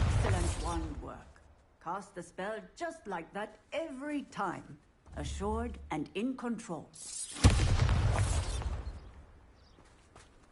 wand work. Cast the spell just like that every time. Assured and in control.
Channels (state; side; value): identical; both; correlation 1.00